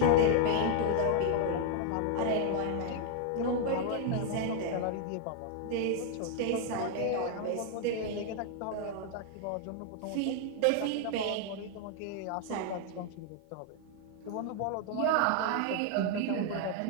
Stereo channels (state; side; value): different; both; correlation 0.00